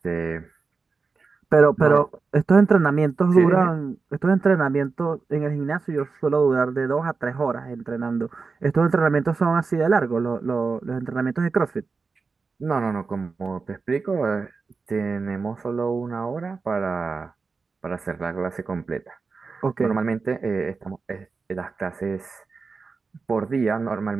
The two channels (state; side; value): quieter; left; 4.6 dB